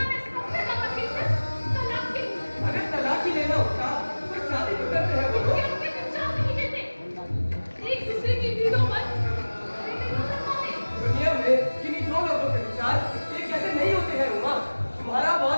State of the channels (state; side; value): inverted; both; correlation -1.00